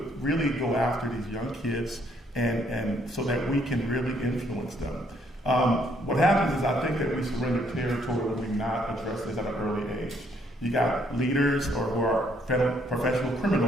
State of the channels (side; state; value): both; normal; correlation 0.68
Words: really go after these young kids and so that we can really influence them. What happens is I think that we surrender territory when we not address this at an early age. You got leaders or who are professional